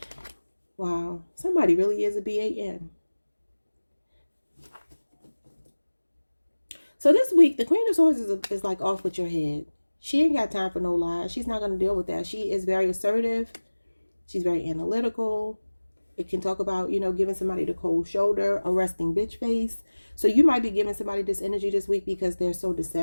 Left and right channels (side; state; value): both; inverted; correlation -1.00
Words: Wow. Somebody really is a BAN. So this week, the Queen of Swords is like off with your head. She ain't got time for no lies. She's not going to deal with that. She is very assertive. She's very analytical. It can talk about, you know, giving somebody the cold shoulder, a resting bitch face. So you might be giving somebody this energy this week because they're so